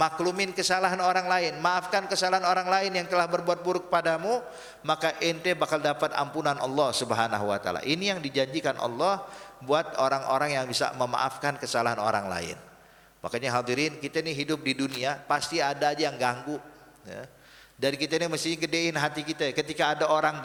kesalahan orang lain, maafkan kesalahan orang lain yang telah berbuat buruk padamu, maka ente bakal dapat ampunan Allah Subhanahu wa taala. Ini yang dijanjikan Allah buat orang-orang yang bisa memaafkan kesalahan orang lain. Makanya hadirin, kita ini hidup di dunia pasti ada aja yang ganggu, ya. Dari kita ini mesti gedein hati kita. Ketika ada orang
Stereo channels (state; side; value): identical; both; correlation 1.00